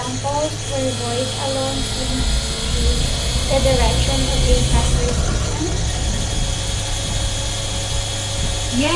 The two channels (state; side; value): identical; both; correlation 1.00